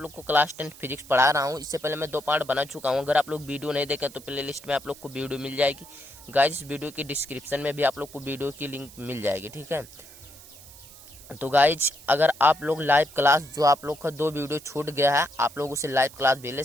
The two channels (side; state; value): right; noise; hiss, 19 dB below the sound